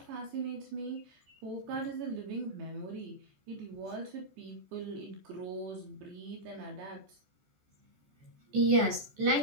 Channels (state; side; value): late; left; 14 ms